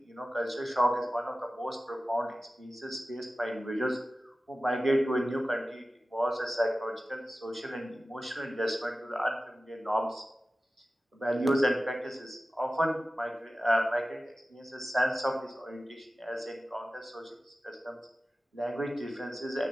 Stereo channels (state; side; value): normal; both; correlation 0.95